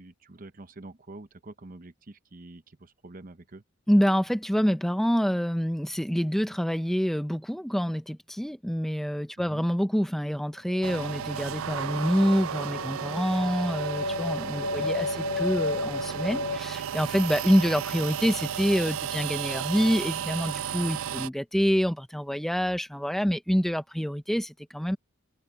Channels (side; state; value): both; normal; correlation 0.82